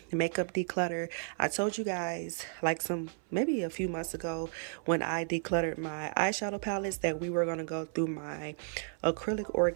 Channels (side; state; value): left; silent; 56 dB below the other